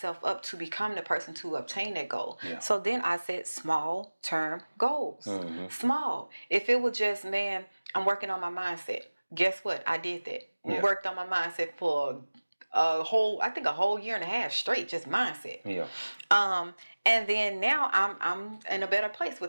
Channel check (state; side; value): inverted; both; correlation -1.00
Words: up to become the person to obtain that goal. So then I set small term goals. Small. If it was just, man, I'm working on my mindset. Guess what? I did that. Worked on my mindset for a whole year and a half straight, just mindset. And then now I'm in a better place